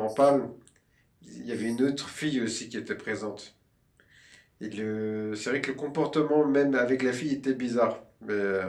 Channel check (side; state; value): both; identical; correlation 1.00